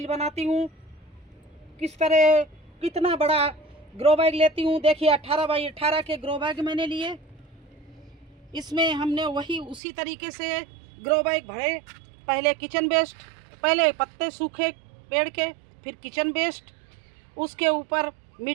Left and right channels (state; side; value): drops out; left; at 9.8 s